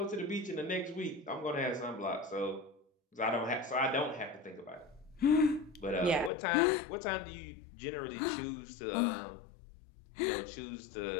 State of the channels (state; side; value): drops out; right; at 6.3 s